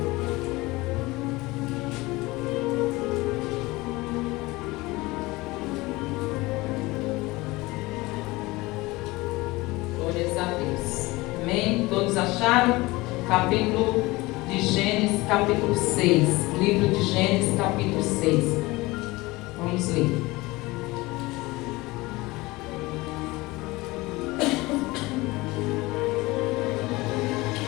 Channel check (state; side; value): quieter; right; 21.4 dB